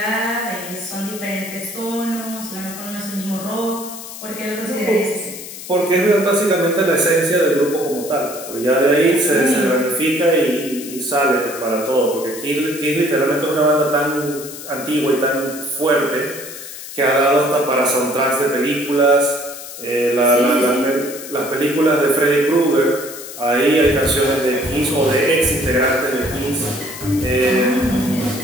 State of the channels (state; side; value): noise; left; hiss, 12 dB below the sound